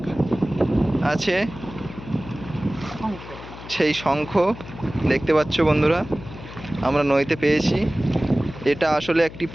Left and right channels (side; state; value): left; noise; hum, 14 dB below the sound